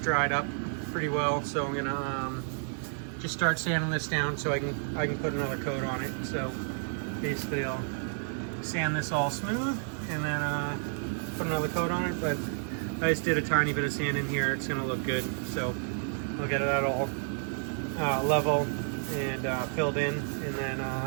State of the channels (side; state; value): left; silent; 57 dB below the other